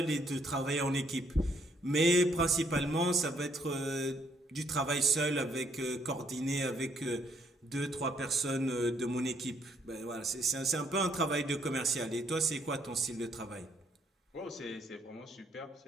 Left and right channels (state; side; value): normal; both; correlation 0.69